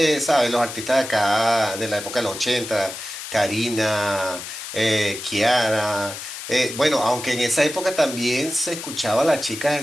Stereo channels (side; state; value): left; noise; hiss, 9 dB below the sound